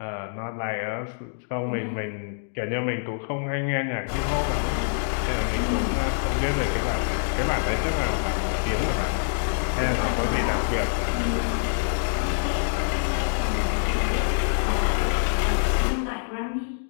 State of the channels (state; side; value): silent; right; digital silence